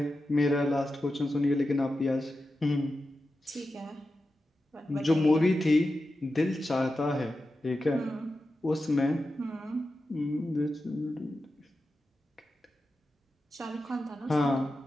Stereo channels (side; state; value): both; normal; correlation 0.91